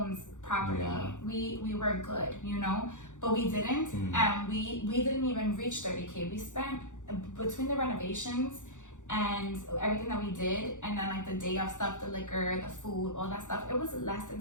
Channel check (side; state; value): right; late; 0.86 ms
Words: property. Yeah. We were good, you know, but we didn't. And we didn't even reach 30K. We spent, between the renovations and everything that we did, and then like the day of stuff, the liquor, the food, all that stuff, it was less than